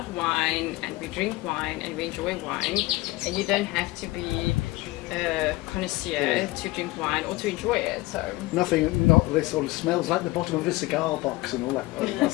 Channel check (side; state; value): right; quieter; 20.4 dB